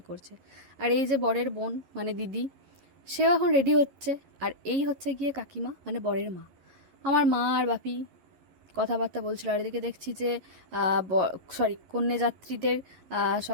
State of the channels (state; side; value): late; left; 11 ms